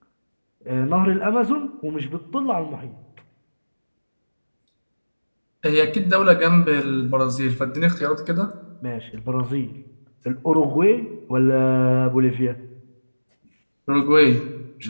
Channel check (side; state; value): both; inverted; correlation -1.00